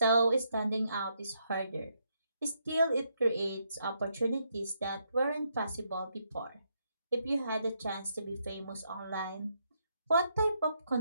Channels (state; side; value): inverted; both; correlation -0.77